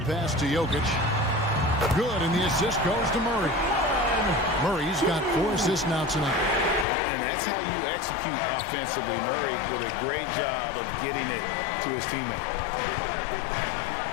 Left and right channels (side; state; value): right; drops out; at 6.9 s